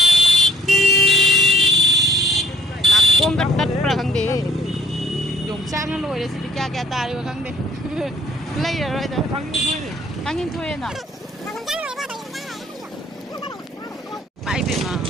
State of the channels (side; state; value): both; normal; correlation 0.63